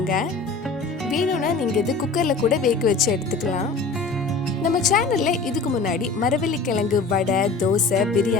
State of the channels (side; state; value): right; quieter; 4.1 dB